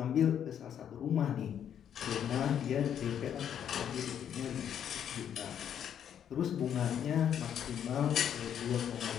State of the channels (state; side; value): quieter; right; 9.2 dB